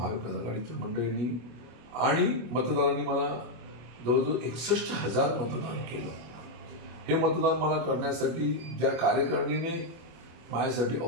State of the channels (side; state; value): left; late; 24 ms